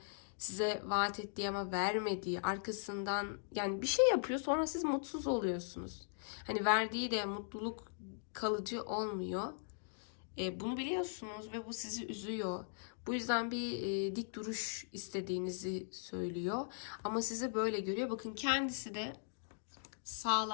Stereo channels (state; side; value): silent; right; digital silence